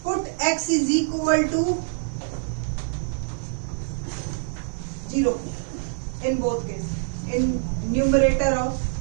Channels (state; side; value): silent; left; digital silence